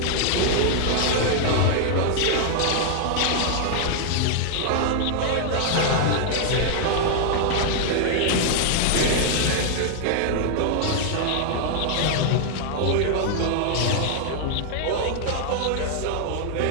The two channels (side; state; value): both; different; correlation 0.00